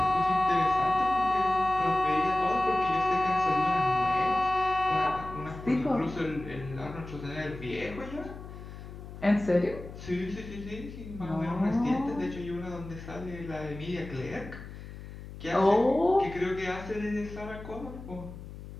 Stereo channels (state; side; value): noise; left; hum, 13 dB below the sound